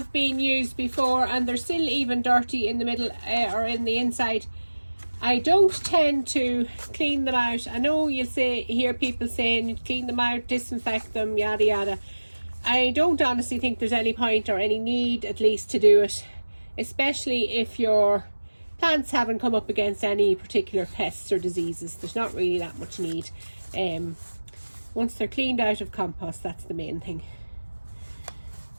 been used before and they're still even dirty in the middle or in the inside. I don't tend to clean them out. I know you'll hear people saying you clean them out, disinfect them, yada yada. I don't honestly think there's any point or any need, at least, to do it, especially if your plants haven't come up against any particular pests or diseases. There's not really that much need. Once they're cleaned out of compost, that's the main thing.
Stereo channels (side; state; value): both; inverted; correlation -1.00